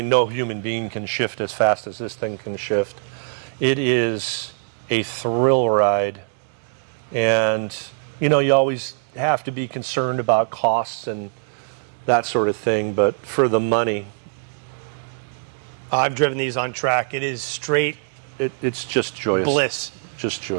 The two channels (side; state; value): left; silent; digital silence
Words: no human being can shift as fast as this thing can shift. It is a thrill ride. And, you know, you always have to be concerned about costs and that sort of thing, but for the money, I've driven these on track. It is straight it's just joyous. bliss. Just